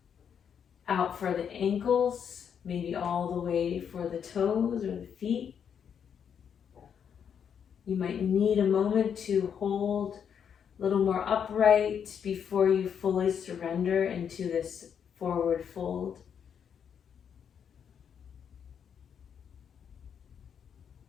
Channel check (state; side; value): quieter; right; 7.8 dB